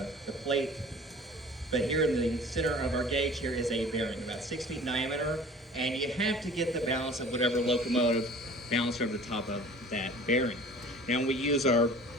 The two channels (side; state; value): both; normal; correlation 0.45